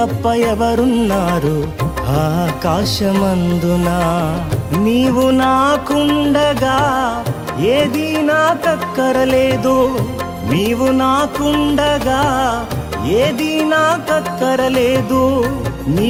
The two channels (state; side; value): identical; both; correlation 1.00